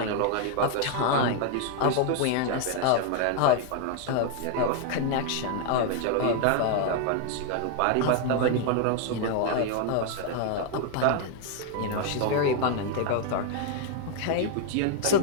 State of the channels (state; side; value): different; both; correlation 0.00